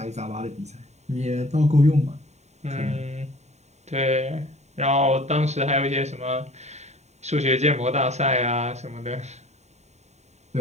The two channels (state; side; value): late; left; 0.32 ms